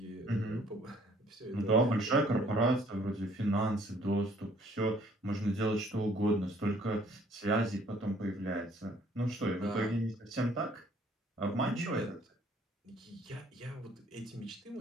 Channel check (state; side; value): normal; both; correlation 0.59